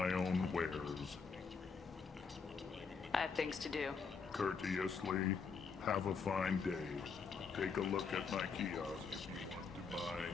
own wares. I have things to do. Courteously. Have a fine day. Take a look at my kiosk if you want to buy.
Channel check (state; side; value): quieter; right; 5.4 dB